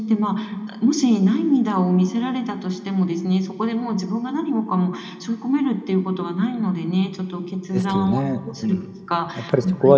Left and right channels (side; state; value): both; identical; correlation 1.00